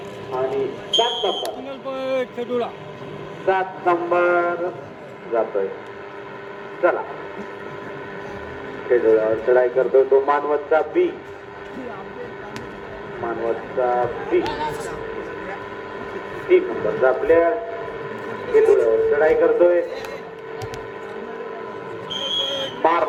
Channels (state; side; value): identical; both; correlation 1.00